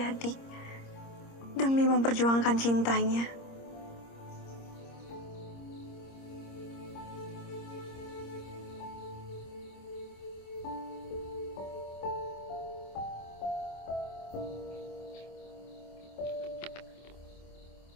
demi memperjuangkan cintanya.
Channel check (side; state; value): right; late; 26 ms